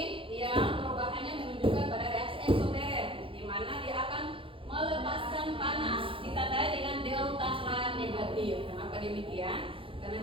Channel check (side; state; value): left; late; 0.26 ms